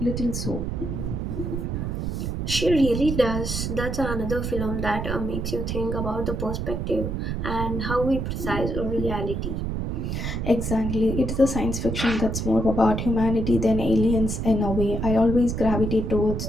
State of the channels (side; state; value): right; noise; rumble, 2 dB below the sound